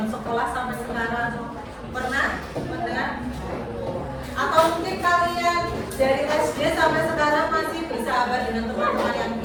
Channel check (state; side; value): identical; both; correlation 1.00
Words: sekolah sampai sekarang, pernah? Atau mungkin kalian dari SD sampai sekarang masih bersahabat dengan teman-teman yang